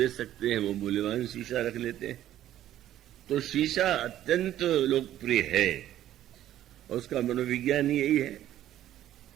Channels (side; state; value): left; quieter; 12.5 dB